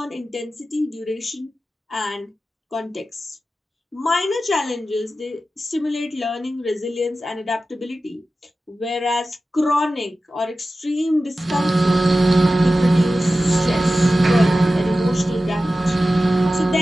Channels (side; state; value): both; normal; correlation 0.94